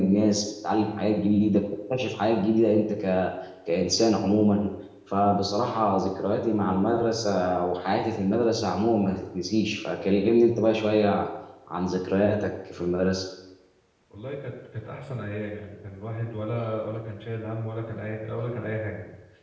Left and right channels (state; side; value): identical; both; correlation 1.00